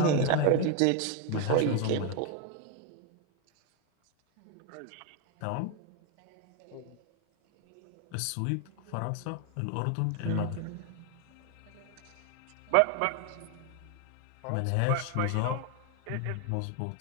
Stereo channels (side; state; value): both; different; correlation 0.01